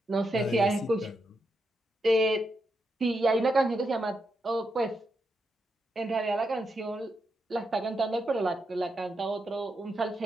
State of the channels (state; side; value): normal; both; correlation 0.83